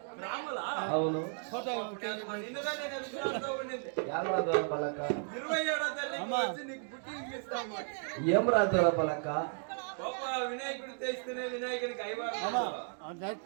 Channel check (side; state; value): left; silent; 55 dB below the other